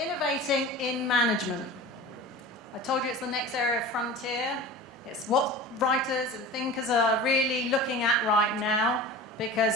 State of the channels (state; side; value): normal; both; correlation 0.35